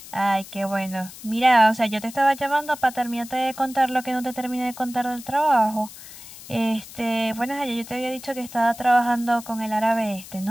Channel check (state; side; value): noise; left; hiss, 16 dB below the sound